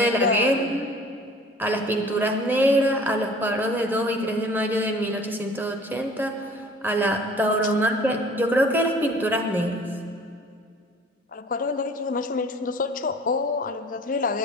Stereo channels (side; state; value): both; normal; correlation 0.48